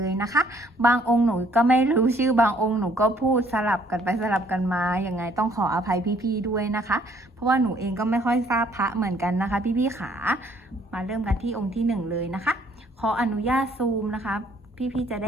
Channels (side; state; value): both; normal; correlation 0.63